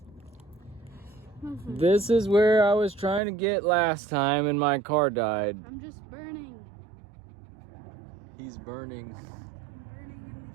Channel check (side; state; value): left; drops out; at 3.2 s